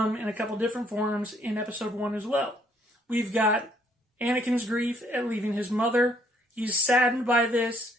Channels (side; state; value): both; normal; correlation 0.67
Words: in a couple different forms in episode 1 as well. We've got Anakin's grief at leaving his mother. He's saddened by this.